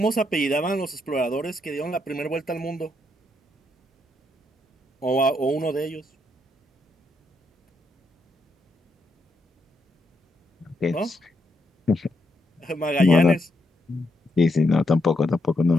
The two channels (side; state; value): both; normal; correlation 0.79